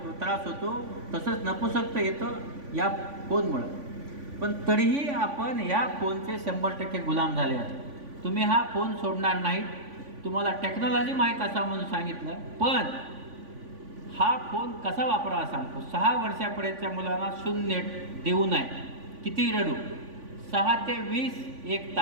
होतो. तसंच नपुसकता येतं या फोनमुळं. पण तरीही आपण ह्या फोनचे 100% गुलाम झाले आहात. तुम्ही हा फोन सोडणार नाही. तुम्हाला टेक्नॉलॉजी माहीत असा म्हणून सांगितलं, पण हा फोन कसा वापरावा सांगतो. 6 वर्षापर्यंतच्या मुलांना शून्य देऊ नये. किती रडू, 6 ते 20 1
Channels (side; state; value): left; late; 3.5 ms